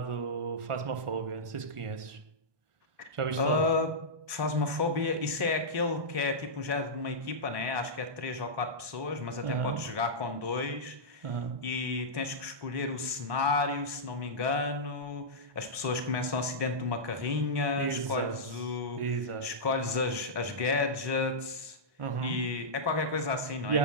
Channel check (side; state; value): left; late; 1.2 ms